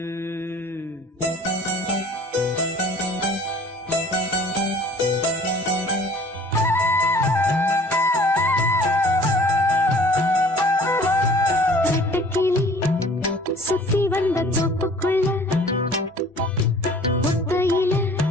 சுத்தி வந்த தோப்புக்குள்ள ஒத்தையில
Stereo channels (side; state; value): both; normal; correlation 0.50